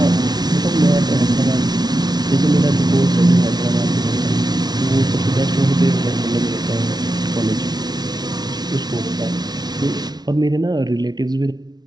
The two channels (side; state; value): left; late; 0.19 ms